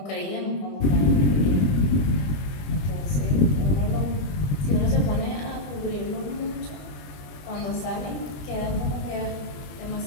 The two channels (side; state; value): right; late; 21 ms